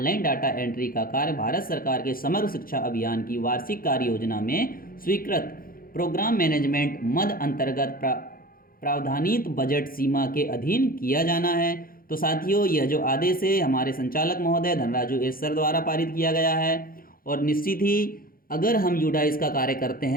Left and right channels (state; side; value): late; right; 0.42 ms